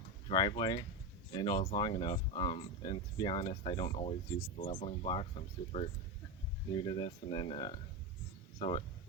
driveway, and it was long enough. And to be honest, I don't always use the leveling blocks. I'm super new to this, and then so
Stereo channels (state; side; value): normal; both; correlation 0.15